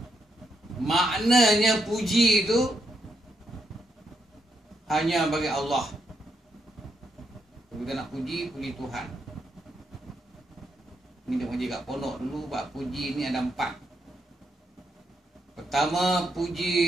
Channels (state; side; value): normal; both; correlation 0.79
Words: Maknanya puji itu hanya bagi Allah. Kita nak puji Tuhan. Ini dia menjaga pondok dulu. Bab puji ini ada 4. Pertama,